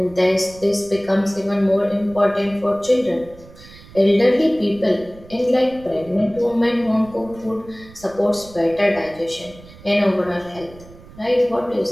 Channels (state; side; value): noise; right; rumble, 21 dB below the sound